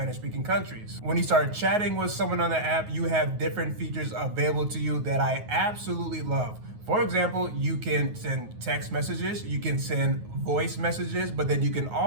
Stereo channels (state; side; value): late; left; 9.4 ms